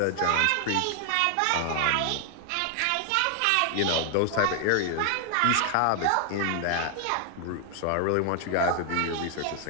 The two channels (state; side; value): different; both; correlation 0.00